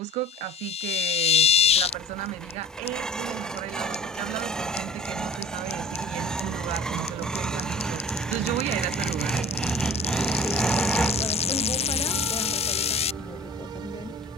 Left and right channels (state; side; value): normal; both; correlation 0.43